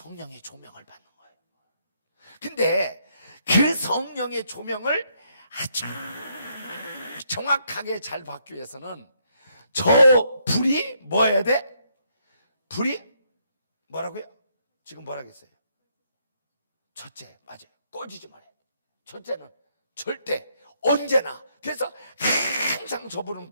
조명을 받는 거예요. 근데 그 성령의 조명을 아주 정확하게 잘 받기 위해서는 저 불이 뭐 해야 돼? 불이 뭐라고요? 지금 뭐라고 했어요? 첫째, 맞아요. 꺼지지 말아야 돼. 첫째는 절대, 언제나. 그래서 항상 저 불은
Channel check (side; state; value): both; inverted; correlation -0.73